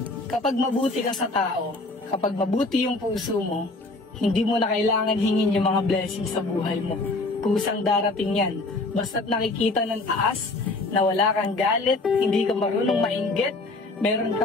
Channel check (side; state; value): right; quieter; 3.1 dB